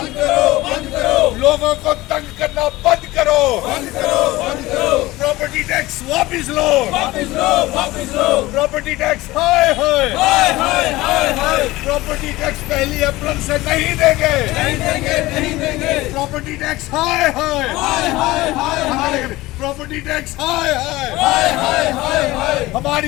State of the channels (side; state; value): right; quieter; 18.9 dB